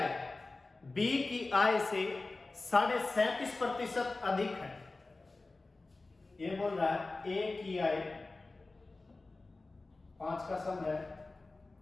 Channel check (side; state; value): right; quieter; 3.4 dB